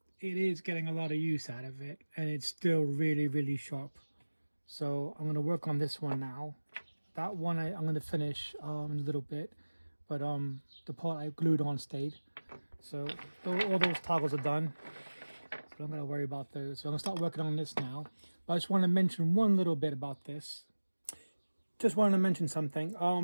it is getting a lot of use out of it, and it's still really, really sharp. So I'm going to work on this one now. That one I'm going to finish in a little bit, but the part I glued on stayed. So all those toggles are done. So I'm going to worry about those. So I'm going to start working on this now. But I just want to mention one little bit about this. Just wanted to mention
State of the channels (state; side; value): inverted; both; correlation -1.00